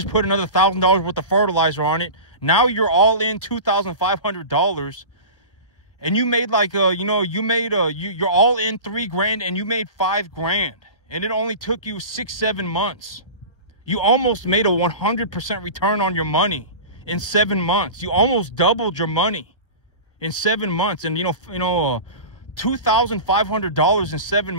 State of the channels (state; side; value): late; right; 1.5 ms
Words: put another $1,000 worth of fertilizer on it. Now you're all in $2,500. And you made like, you're all in $3,000 and you made $5,000. And it only took you 6-7 months. You almost made a 100% return on your money in 7 months. You almost doubled your money in 7 months. And $2,500 in 7